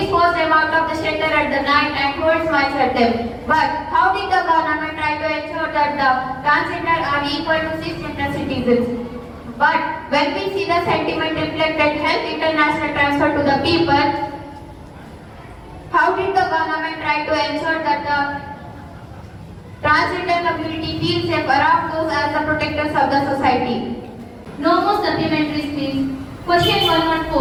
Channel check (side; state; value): both; identical; correlation 1.00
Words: forced them out of the shelter at the night and threw smiles at them. But how did the government try to ensure that the transgender are equal to cisgender citizens? But when we see the sentiment reflected Health International transfer to the people, how did the government try to ensure that the transgender community feels safe around those as the protectors of the society? No more supplementaries, please. Question